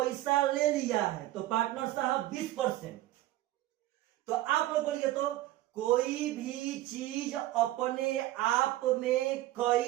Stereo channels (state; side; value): quieter; left; 15.4 dB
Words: ले लिया है, तो पार्टनर साहब 20%। तो आप लोग बोलिए तो कोई भी चीज अपने आप में